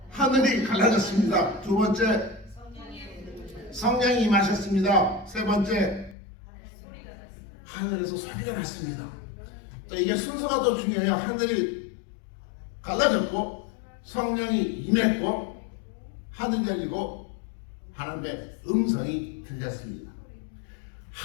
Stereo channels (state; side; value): drops out; right; at 6.2 s